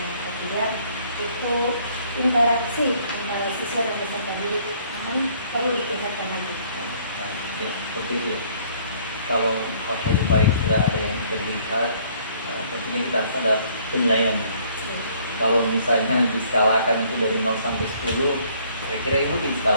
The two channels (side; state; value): both; inverted; correlation -0.61